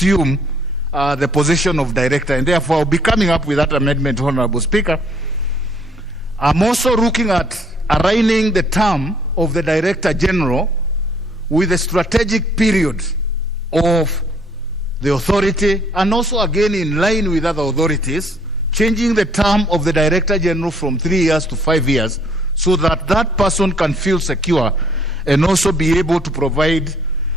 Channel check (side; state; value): both; normal; correlation 0.62